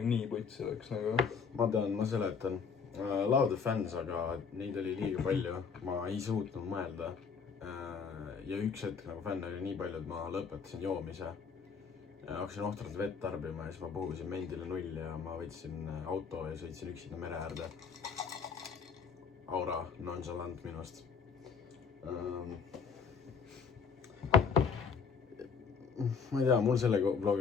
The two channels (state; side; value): quieter; right; 5.8 dB